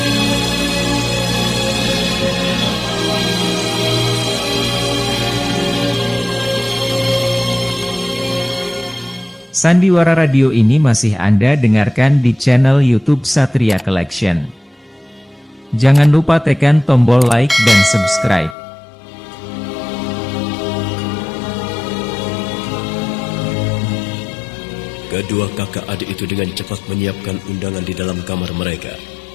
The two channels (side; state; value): right; drops out; at 18.6 s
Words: Sandiwara Radio ini masih Anda dengarkan di channel YouTube Satria Collection. Jangan lupa tekan tombol like dan subscribe. Kedua kakak adik itu dengan cepat menyiapkan undangan di dalam kamar mereka.